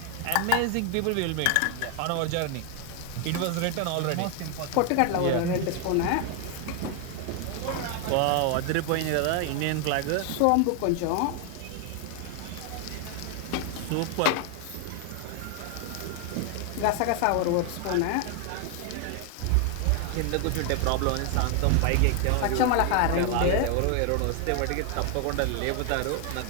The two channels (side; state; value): both; different; correlation 0.00